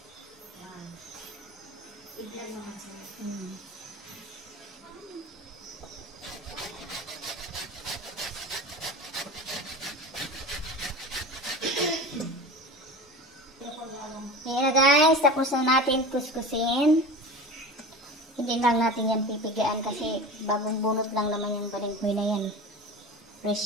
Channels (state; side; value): normal; both; correlation 0.32